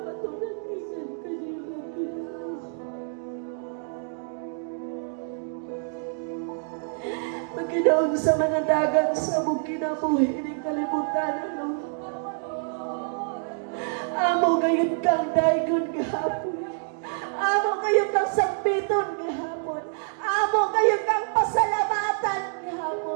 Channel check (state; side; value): silent; left; digital silence